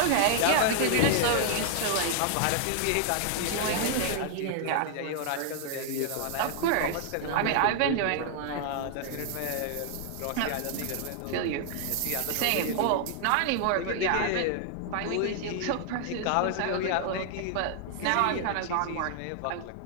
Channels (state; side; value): different; both; correlation 0.00